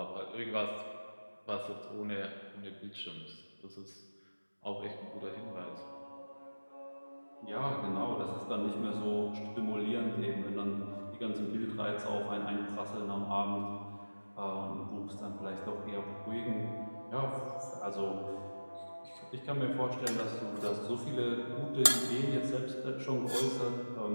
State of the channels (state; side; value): inverted; both; correlation -1.00